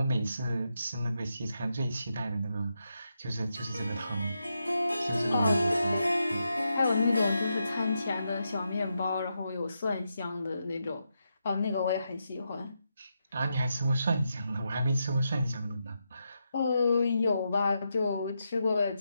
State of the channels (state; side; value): inverted; both; correlation -0.85